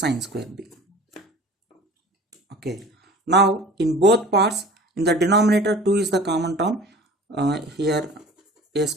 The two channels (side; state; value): both; normal; correlation 0.43